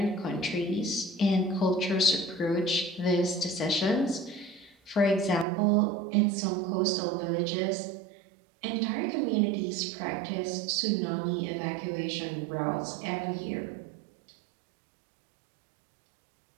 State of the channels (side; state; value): left; drops out; at 5.5 s